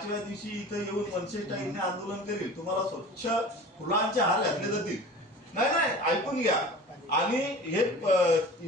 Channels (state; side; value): normal; both; correlation 0.39